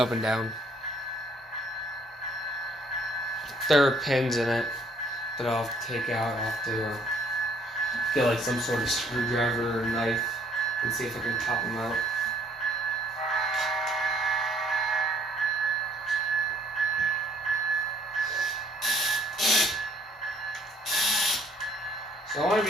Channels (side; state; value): both; normal; correlation 0.63